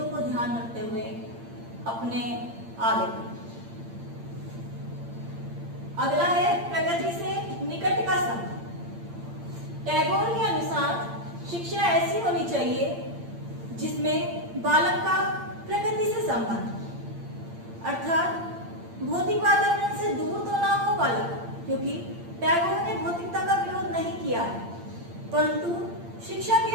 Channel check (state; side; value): late; left; 8.7 ms